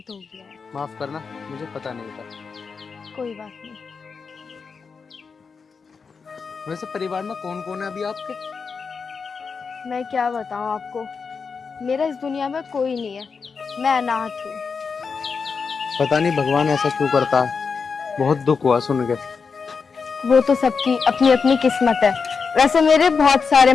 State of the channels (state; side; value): quieter; right; 5.3 dB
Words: हो गया है। माफ करना, मुझे पता नहीं था। कोई बात नहीं। वैसे परिवार में कौन कौन है अभी आपके? मैं क्या बताऊं आपको, मेरा इस दुनिया में कोई नहीं है, मैं अनाथ हूँ। पता नहीं भगवान ऐसा क्यों करता है, बहुत दुख हुआ सुन के। वो तो सबकी अपनी अपनी किस्मत है। वैसे मेरे बहुत सारे